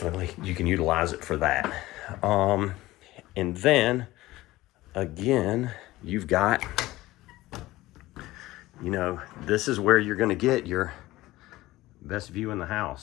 you can utilize it for that. And then, again, you've got, you know, this is where you're going to get your best view in the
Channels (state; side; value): quieter; right; 17.7 dB